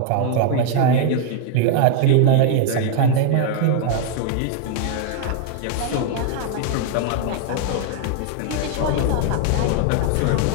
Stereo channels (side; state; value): both; different; correlation 0.00